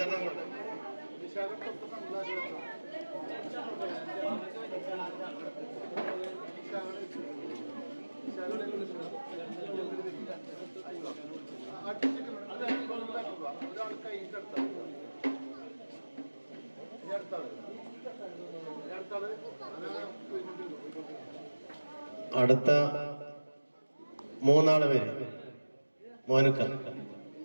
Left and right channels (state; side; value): inverted; both; correlation -1.00